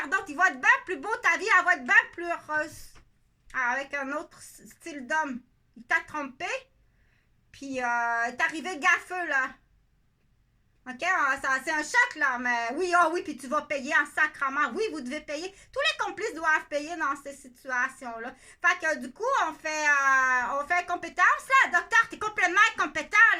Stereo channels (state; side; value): identical; both; correlation 1.00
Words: d'autres. Il va être bien plus beau, ta vie, elle va être bien plus heureuse. Avec un autre style d'homme. Il t'a trompé, puis il est arrivé gaffeux, là. OK? C'est un choc, là, mais oui, oui, puis tu vas payer en sacrement. Oui, vous devez payer. Tous les complices doivent payer dans ces situations-là. Fait que, du coup, on fait compétence, là. Docteur, t'es complètement incompétent,